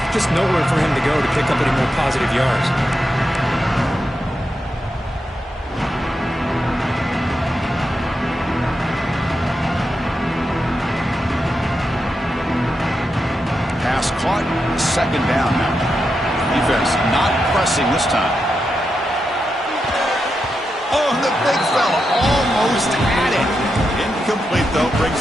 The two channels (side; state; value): both; normal; correlation 0.86